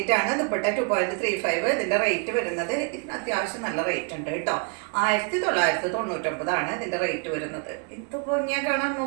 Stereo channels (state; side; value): quieter; left; 38.3 dB